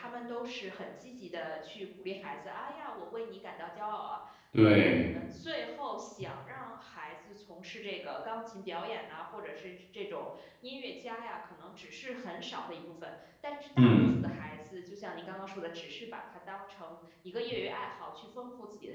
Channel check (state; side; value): identical; both; correlation 1.00